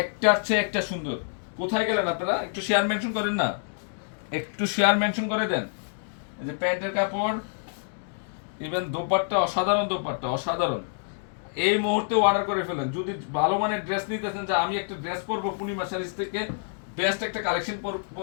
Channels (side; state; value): right; silent; digital silence